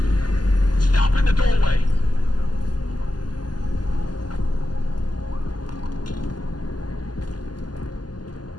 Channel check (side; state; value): right; late; 0.70 ms